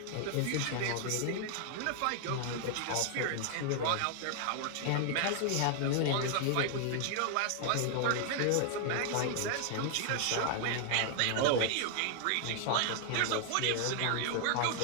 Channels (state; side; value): different; both; correlation 0.00